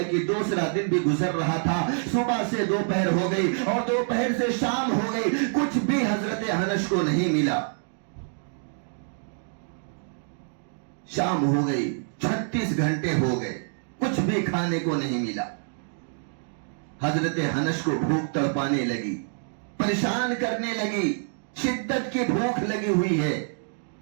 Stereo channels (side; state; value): left; silent; 61 dB below the other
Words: کہ دوسرا دن بھی گزر رہا تھا، صبح سے دوپہر ہو گئی اور دوپہر سے شام ہو گئی، کچھ بھی حضرت انس کو نہیں ملا۔ شام ہو گئی، 36 گھنٹے ہو گئے، کچھ بھی کھانے کو نہیں ملا۔ حضرت انس کو بھوک تڑپانے لگی، پریشان کرنے لگی، شدت کی بھوک لگی ہوئی ہے۔